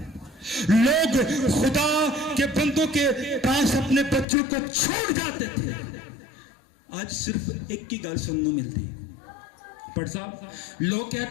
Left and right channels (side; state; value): right; drops out; at 4.2 s